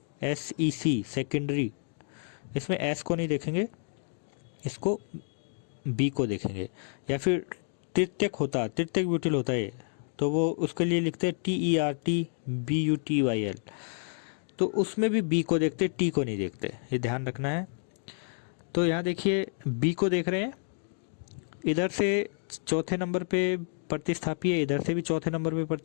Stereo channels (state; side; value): silent; right; 58 dB below the other